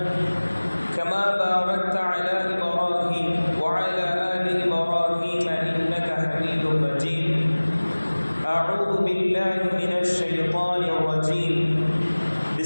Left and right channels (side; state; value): both; inverted; correlation -1.00